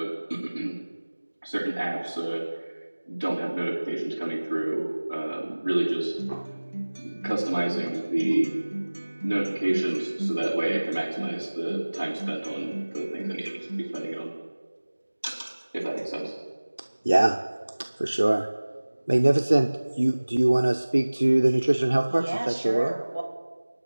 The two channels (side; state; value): both; inverted; correlation -1.00